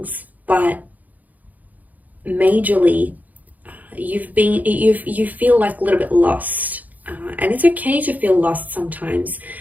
but majorly you feel like a little bit lost, and it's okay to feel lost sometimes,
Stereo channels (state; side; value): late; left; 0.080 ms